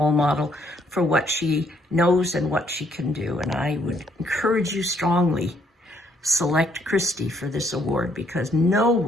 model for what she knows and what she can do. And I would encourage you strongly, select Kristy for this award, because no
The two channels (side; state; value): both; normal; correlation 0.68